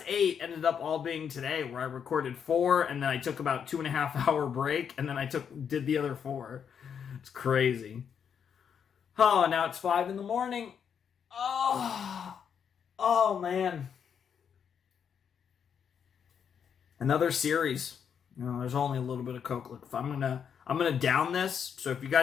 8 ended up all being today, where I recorded 4, and then I took about 2.5 hour break, and then I did the other 4. It's crazy. Oh, now it's 5 in the morning. Oh man. Another series. There's only a little bit of Coke. Look, I'm gonna down this. So if you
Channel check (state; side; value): quieter; right; 7.5 dB